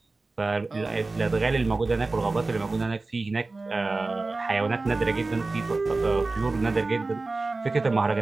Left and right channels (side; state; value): left; quieter; 3.4 dB